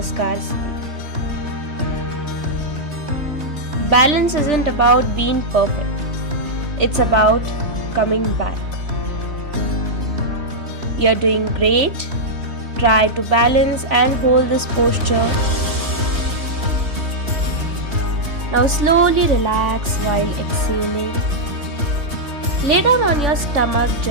Sthiti. Balance isn't about being perfect. It's about coming back. You're doing great. Try to balance and hold this posture. Now slowly relax while exhaling. Lay down on your stomach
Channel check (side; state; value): left; late; 3.1 ms